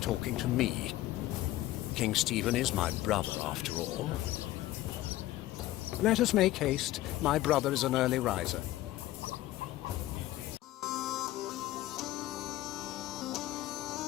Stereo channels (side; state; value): right; quieter; 15.8 dB